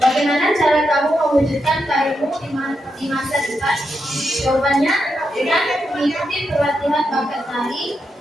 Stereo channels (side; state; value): both; normal; correlation 0.84